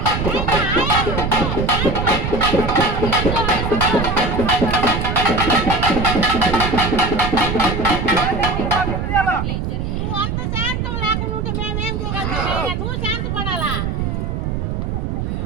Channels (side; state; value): right; noise; rumble, 2 dB below the sound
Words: నువ్వు అంత శాంతం లేకుండా ఉంటే మేమేం చేయగలుగుతాం నువ్వు శాంతపడాలా